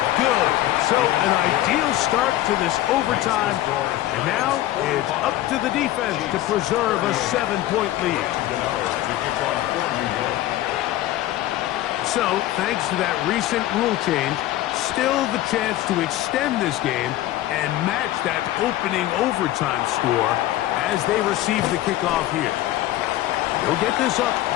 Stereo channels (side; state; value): right; quieter; 14.7 dB